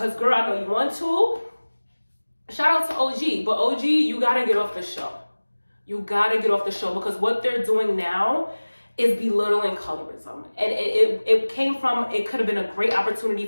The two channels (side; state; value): both; inverted; correlation -1.00